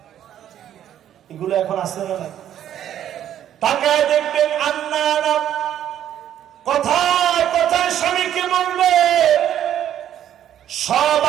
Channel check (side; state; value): left; quieter; 10.8 dB